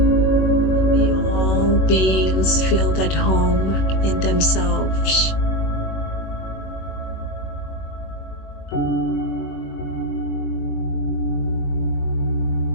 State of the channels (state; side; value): late; right; 21 ms